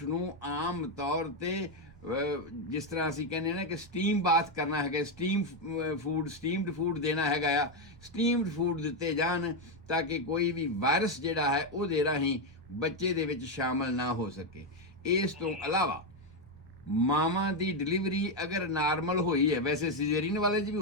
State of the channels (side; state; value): left; noise; rumble, 29 dB below the sound